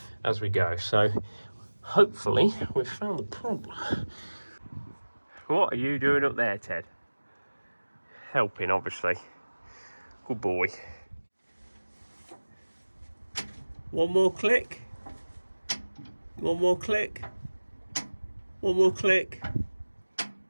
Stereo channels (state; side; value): inverted; both; correlation -1.00